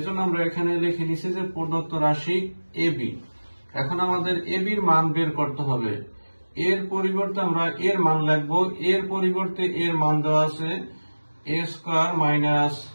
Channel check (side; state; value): both; inverted; correlation -1.00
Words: আমরা এখানে লিখে নিছি যে প্রদত্ত রাশি ab। এখন আমাদের ab এর মান বের করতে হবে। এর পরিবর্তে আমরা এর মান লিখব। এর পরিবর্তে এর মান দেওয়া আছে a square minus